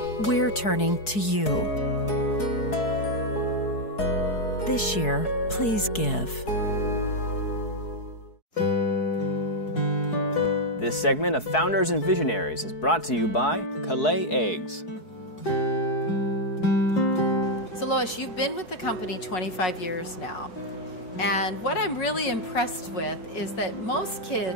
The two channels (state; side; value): late; right; 4.7 ms